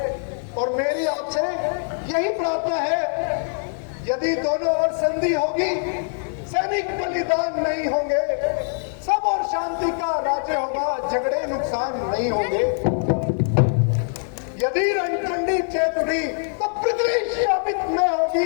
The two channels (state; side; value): silent; right; digital silence